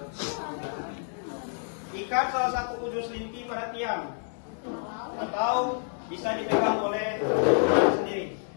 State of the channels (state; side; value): silent; right; digital silence